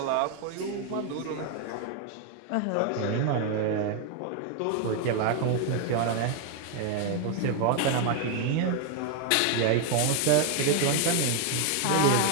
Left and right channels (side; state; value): both; different; correlation 0.01